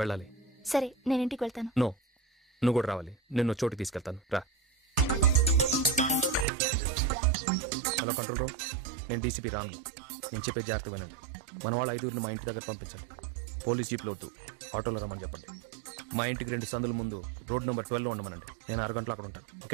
వెళ్ళాలి. సరే నేను ఇంటికి వెళ్తాను. నో, నువ్వు కూడా రావాలి. నిన్ను చోటుకి తీసుకెళ్తాను, రా. హలో కంట్రోల్ రూమ్, నేను డీసీపీ రాను. నేను చెప్పే జాగ్రత్త వినండి. మన వాళ్ళు 5 మా ఇంటి దగ్గర పంపించండి. పోలీస్ జీప్లో వద్దు, ఆటోలో రమ్మని చెప్పండి. మా ఇంటికి 2 సందుల ముందు రోడ్ నెంబర్ 12లో ఉండమనండి. నేను 6 గంటలు అక్కడ ఉంటాను.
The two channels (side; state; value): left; drops out; at 6.5 s